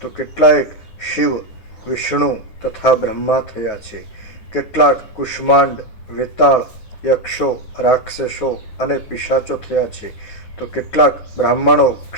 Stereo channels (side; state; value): right; late; 10 ms